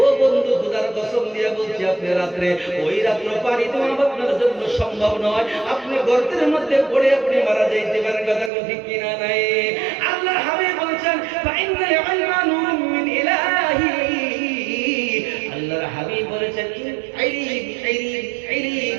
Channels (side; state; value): left; drops out; at 8.5 s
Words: বন্ধু খোদার কসম দিয়ে বলছি আপনি রাত্রে ওই রাত্র পানি দেওয়া আপনার জন্য সম্ভব নয়, আপনি গর্তের মধ্যে পড়ে আপনি মারা যাইতে পারেন। কথা কোন ঠিক কিনা নাই? আল্লাহর হাবিব বলেছেন ফাইনাল ইলমা নূরুম মিন ইলাহি, আল্লাহর হাবিব বলেছেন